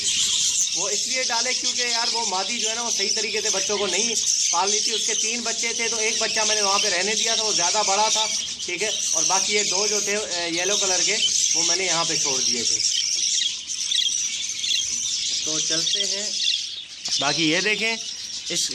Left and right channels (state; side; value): identical; both; correlation 1.00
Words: वो इसलिए डाले क्योंकि यार वो मादी जो है ना वो सही तरीके से बच्चों को नहीं पाल ली थी। उसके 3 बच्चे थे, तो एक बच्चा मैंने वहाँ पे रहने दिया था, वो ज़्यादा बड़ा था, ठीक है। और बाकी ये 2 जो थे येलो कलर के, वो मैंने यहाँ पे छोड़ दिए थे। तो चलते हैं। बाकी ये देखें,